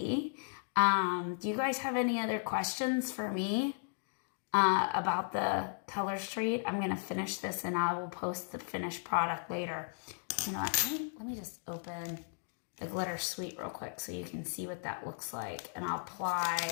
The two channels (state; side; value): silent; right; digital silence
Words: Do you guys have any other questions for me about the Color Street? I'm going to finish this, and I will post the finished product later. You know what? Let me just open the Glitter Suite real quick so you can see what that looks like, and I'll